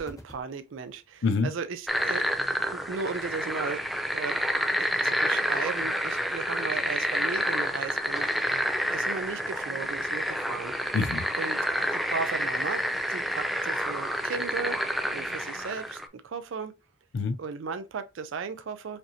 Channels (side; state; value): both; normal; correlation 0.70